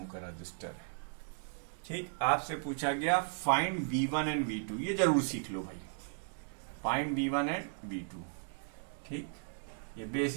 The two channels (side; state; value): left; silent; digital silence